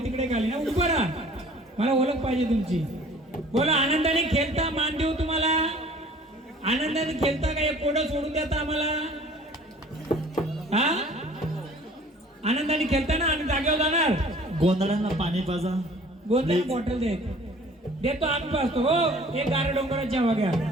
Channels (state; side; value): normal; both; correlation 0.50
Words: तिकडे खाली ना, उभं राहा, मला ओळख पाहिजे तुमची. बोला. आनंदाने खेळता, मान देऊ तुम्हाला. आनंदाने खेळता का? एक कोड सोडून देता आम्हाला? हा आनंदाने खेळता ना? आम्ही जागेवर जाणार. गोंधळांना पाणी पाजा. गोंधळ बॉटल देतो आम्ही पाजतो. हो एक गारे डोंगराची हवा घ्या.